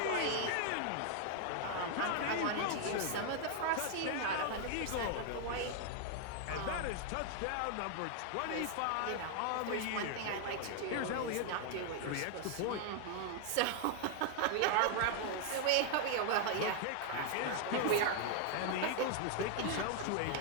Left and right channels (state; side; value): different; both; correlation 0.00